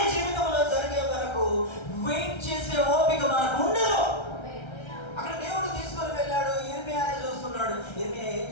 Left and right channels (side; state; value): right; late; 1.3 ms